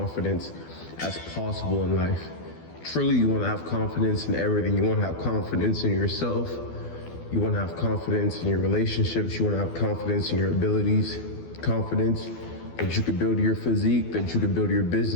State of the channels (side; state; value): right; late; 12 ms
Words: as possible in life. Truly, you want to have confidence in everything. You want to have confidence in yourself. You want to have confidence in your relationships. You want to have confidence in your abilities. Confidence that you could build your physique, that you could build your